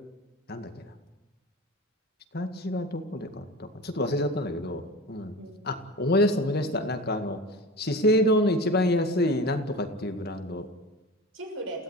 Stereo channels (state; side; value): normal; both; correlation 0.33